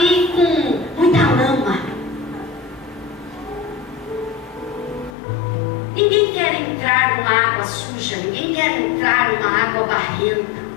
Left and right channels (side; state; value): right; drops out; at 5.2 s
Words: com muita lama. Ninguém quer entrar numa água suja. Ninguém quer entrar numa água barrenta.